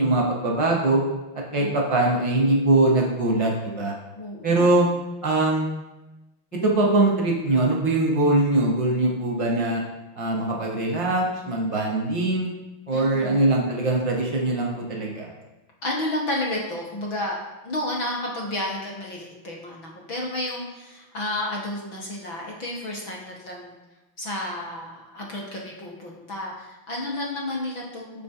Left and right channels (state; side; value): late; right; 6.0 ms